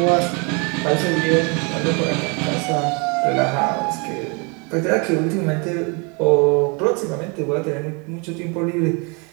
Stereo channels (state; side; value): quieter; left; 31.9 dB